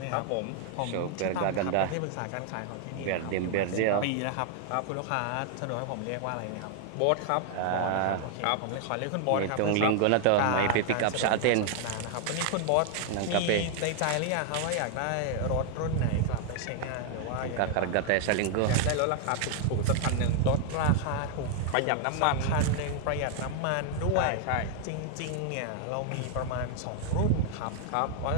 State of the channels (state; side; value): different; both; correlation 0.00